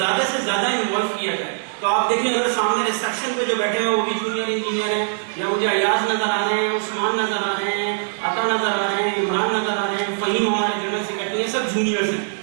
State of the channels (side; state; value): left; silent; digital silence